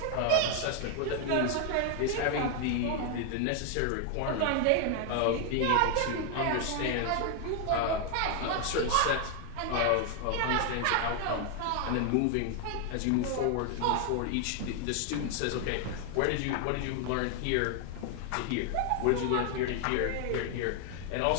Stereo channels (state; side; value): different; both; correlation 0.00